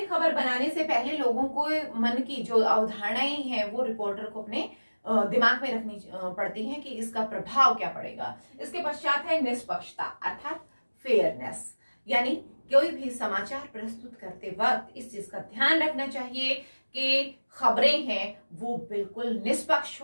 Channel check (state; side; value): inverted; both; correlation -1.00